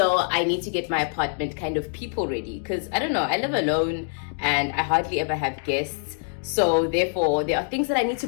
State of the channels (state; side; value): silent; right; 59 dB below the other